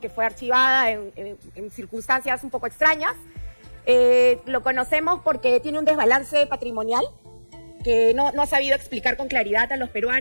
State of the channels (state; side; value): inverted; both; correlation -1.00